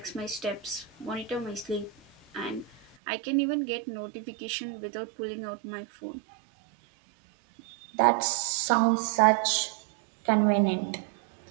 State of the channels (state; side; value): drops out; left; at 3.0 s